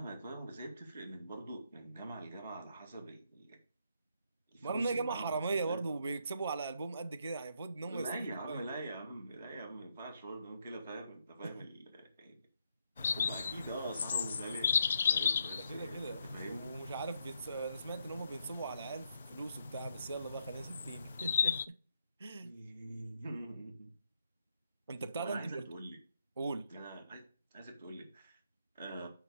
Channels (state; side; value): inverted; both; correlation -0.78